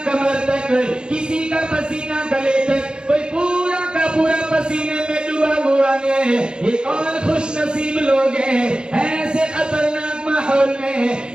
कमर तक, किसी का पसीना गले तक, कोई पूरा का पूरा पसीने में डूबा हुआ है। ये कौन खुश नसीब लोग हैं? ऐसे खतरनाक माहौल में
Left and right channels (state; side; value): late; left; 0.049 ms